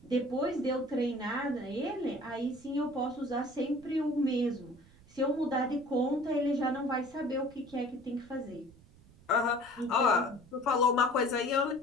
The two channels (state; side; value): noise; right; rumble, 25 dB below the sound